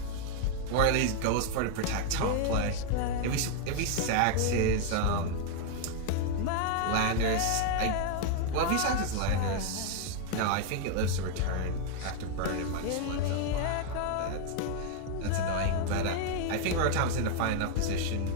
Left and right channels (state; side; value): different; both; correlation 0.00